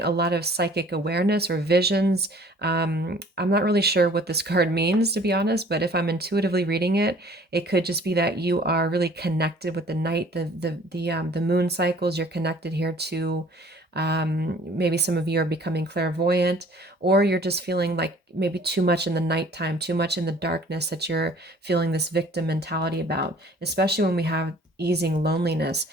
a lot of psychic awareness or visions. I'm not really sure what this card means, to be honest, but if I'm intuitively reading it, it could just be that you are really connected with the night, the moon cycles. You're connected here to maybe some of you are becoming clairvoyant, or you're just feeling like maybe too much in the nighttime, too much in the darkness that you're feeling this victim mentality about, especially when we have easing loneliness.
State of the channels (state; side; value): normal; both; correlation 0.52